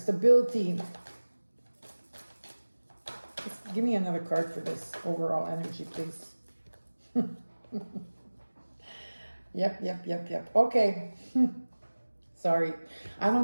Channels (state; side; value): inverted; both; correlation -1.00